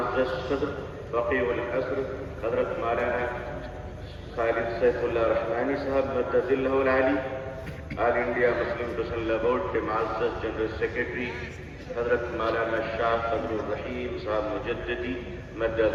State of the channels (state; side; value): identical; both; correlation 1.00